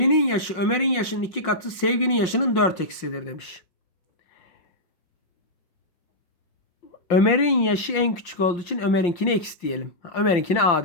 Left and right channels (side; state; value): right; late; 5.5 ms